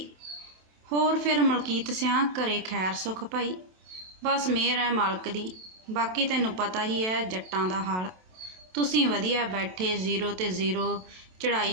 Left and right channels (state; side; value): late; left; 27 ms